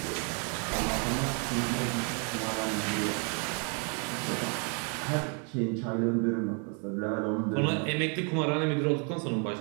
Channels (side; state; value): left; quieter; 38.4 dB